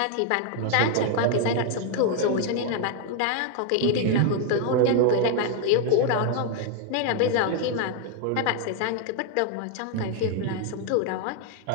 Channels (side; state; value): both; different; correlation 0.01